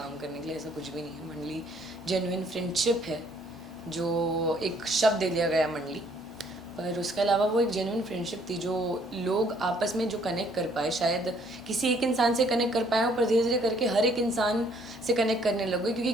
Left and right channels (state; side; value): normal; both; correlation 0.63